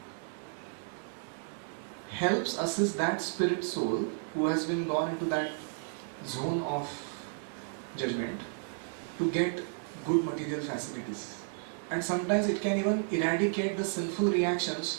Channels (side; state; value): left; silent; digital silence